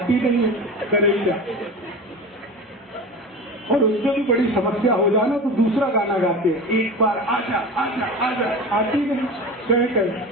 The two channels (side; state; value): both; normal; correlation 0.30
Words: नहीं है, करे क्या। और उससे भी बड़ी समस्या हो जाना तो दूसरा गाना गाते हैं, एक बार आजा आजा आजा, आती नहीं, कहे